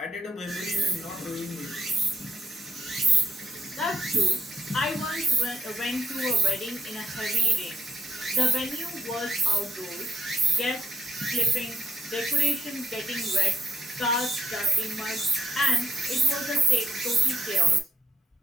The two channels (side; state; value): both; normal; correlation 0.72